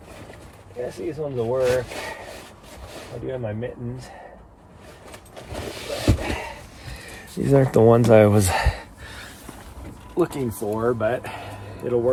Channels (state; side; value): identical; both; correlation 1.00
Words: I guess these ones will work. I do have my mittens. But these aren't the ones I was looking for, but it'll